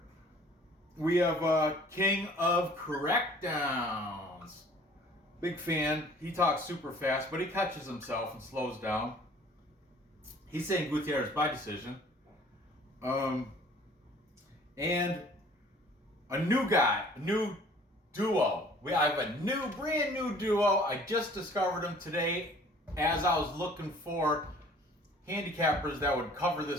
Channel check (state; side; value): normal; both; correlation 0.52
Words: We have King of Correct Downs. Big fan. He talks super fast, but he catches himself and slows down. He's saying Gutierrez by decision. And a new guy, a new duo. I have a brand new duo. I just discovered them today as I was looking for handicappers that would cover